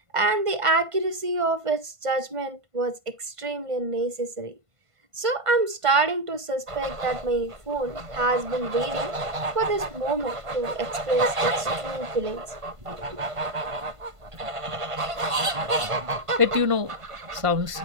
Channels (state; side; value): late; left; 1.5 ms